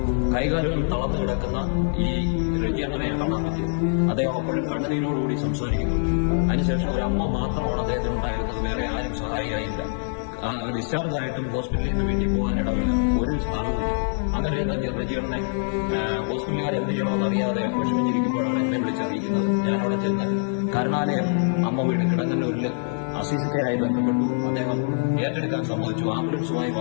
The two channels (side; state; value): right; silent; digital silence